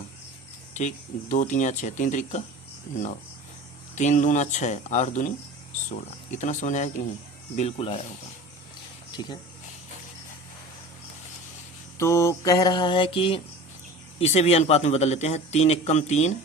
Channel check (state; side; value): normal; both; correlation 0.37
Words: ठीक, 2 3 6, 3 त्रिका 9, 3 दूना 6, 8 दूनी 16। इतना समझ आया कि नहीं, बिल्कुल आया होगा। ठीक है, तो कह रहा है कि इसे भी अनुपात में बदल लेते हैं, 3 1 कम 3